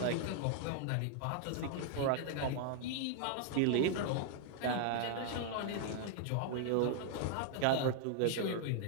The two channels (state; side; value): different; both; correlation 0.00